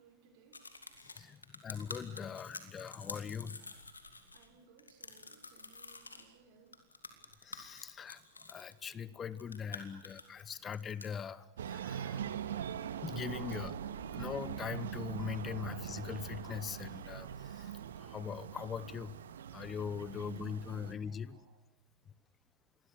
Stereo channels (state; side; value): normal; both; correlation 0.21